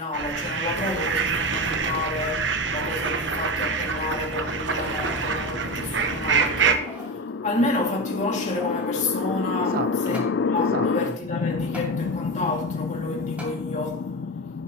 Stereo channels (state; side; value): normal; both; correlation 0.21